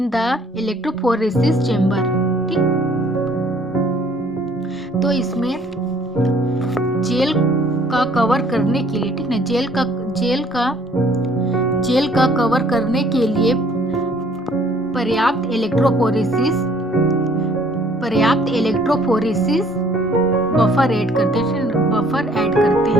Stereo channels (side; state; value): both; normal; correlation 0.59